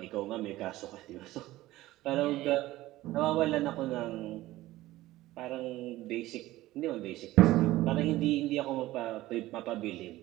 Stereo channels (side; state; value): left; quieter; 16.7 dB